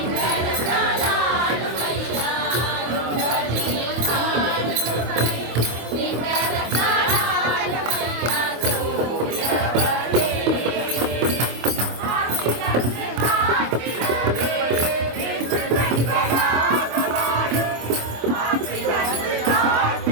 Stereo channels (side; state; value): left; late; 25 ms